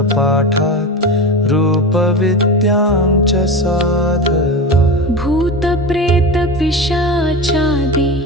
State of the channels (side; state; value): both; normal; correlation 0.25